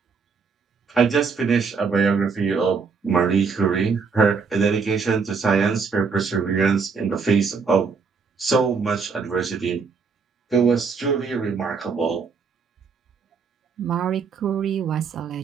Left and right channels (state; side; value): quieter; left; 5.3 dB